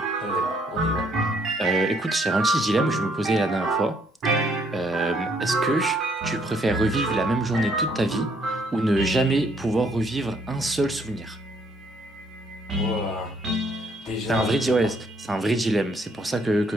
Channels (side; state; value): both; normal; correlation 0.68